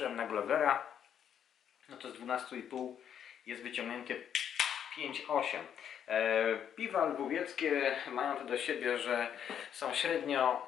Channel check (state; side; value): quieter; right; 9.0 dB